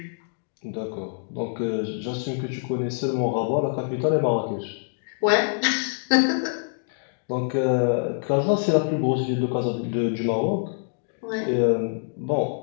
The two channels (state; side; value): silent; right; digital silence